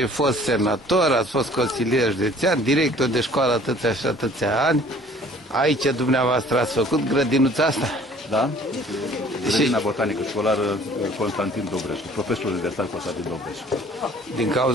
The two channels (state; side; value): normal; both; correlation 0.53